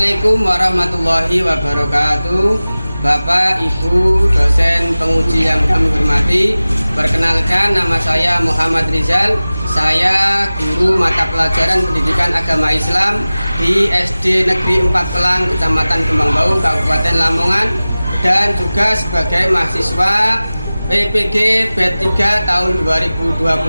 Assalamualaikum warahmatullahi wabarakatuh. Bapak, Ibu, dosen penguji yang kami hormati, perkenalkan nama saya Muhammad Rizal. Saya guru mata pelajaran pendidikan agama Islam di SD Negeri 4 Pelang, Kecamatan Kembangbau, Kabupaten Lamongan, dan juga sebagai mahasiswa PPG B3 tahun 2025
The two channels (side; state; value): both; inverted; correlation -0.97